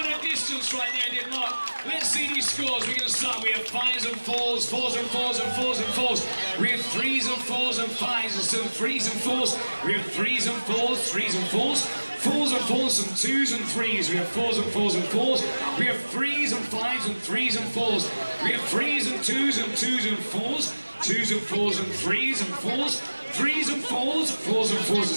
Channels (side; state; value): both; inverted; correlation -1.00